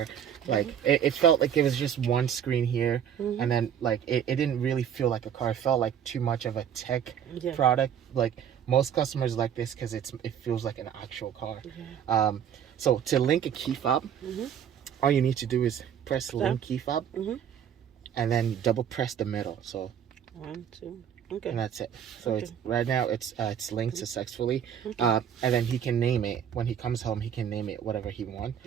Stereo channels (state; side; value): quieter; left; 8.9 dB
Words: like. It felt like it was just one screen here, and then like it didn't really feel like a car. It felt like too much of a tech product. Like most customers like this because it feels like an actual car. So to link a key fob, all you need to do is press link key fob, and then double press the middle. So 1, 2, and that's it. So it's right now it's linked successfully, and then he can name it when he comes home. He can name it whatever he wants.